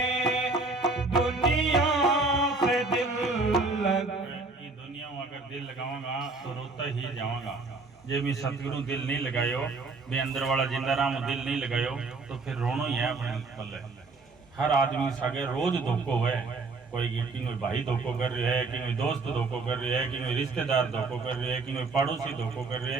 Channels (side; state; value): left; quieter; 3.8 dB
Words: दुनिया से दिल दुनिया में अगर दिल लगाऊंगा तो रोता ही जाऊंगा जे भी सतगुरु दिल नहीं लगायो भी अंदर वाला जिंदाराम दिल नहीं लगायो तो फिर रोनो ही है अपने पल्ले हर आदमी सगे रोज धोखो है कोई भाई धोखो कर रही है कि कोई दोस्त धोखो कर रही है कि कोई रिश्तेदार धोखो कर रही है कि कोई पड़ोसी धोखो कर रही